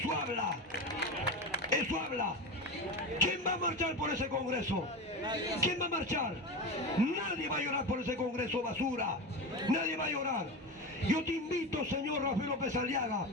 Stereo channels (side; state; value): both; normal; correlation 0.22